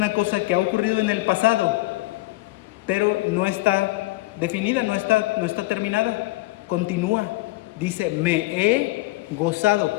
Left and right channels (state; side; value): quieter; right; 20.6 dB